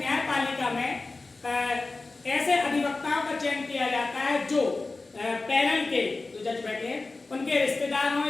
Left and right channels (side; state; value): right; quieter; 3.5 dB